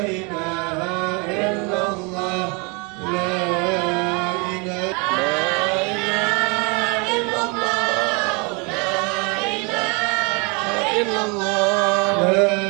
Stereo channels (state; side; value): quieter; left; 31.3 dB